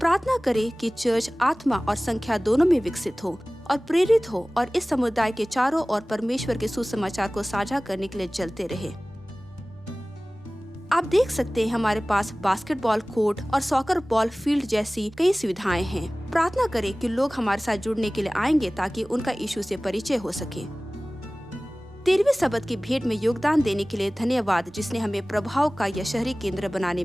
करें कि चर्च आत्मा और संख्या दोनों में विकसित हो और प्रेरित हो और इस समुदाय के चारों ओर परमेश्वर के सुसमाचार को साझा करने के लिए चलते रहे। आप देख सकते हैं, हमारे पास बास्केटबॉल कोर्ट और सॉकर बॉल फील्ड जैसी कई सुविधाएं हैं। प्रार्थना करें कि लोग हमारे साथ जुड़ने के लिए आएंगे ताकि उनका यीशु से परिचय हो सके। 13वीं सबत की भेंट में योगदान देने के लिए धन्यवाद, जिसने हमें प्रभाव का यह शहरी केंद्र बनाने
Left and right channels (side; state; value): both; normal; correlation 0.98